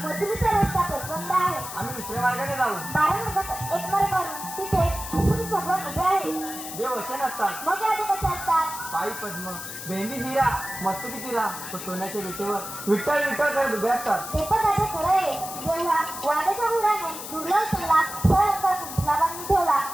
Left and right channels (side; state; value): left; noise; hiss, 9 dB below the sound